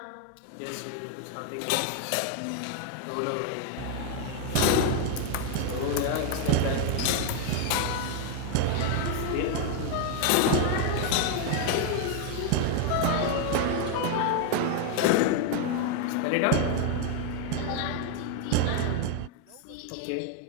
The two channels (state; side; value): different; both; correlation 0.01